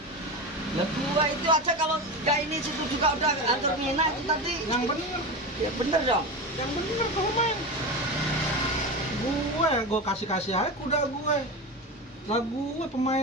Ya gua itu aja kalau enggak ini situ juga udah antar mina itu tadi. yang bener. Ya bener dong. Yang bener kamu main. Gue kasih aja kuda gue. Lah gue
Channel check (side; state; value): both; normal; correlation 0.22